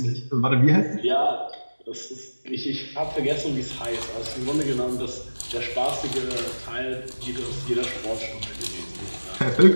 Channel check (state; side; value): inverted; both; correlation -1.00